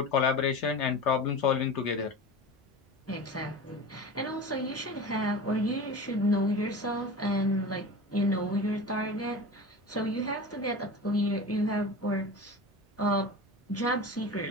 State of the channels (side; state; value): both; normal; correlation 0.31